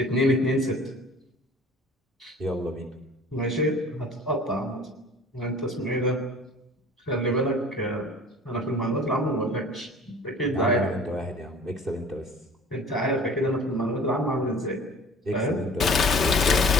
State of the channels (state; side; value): normal; both; correlation 0.46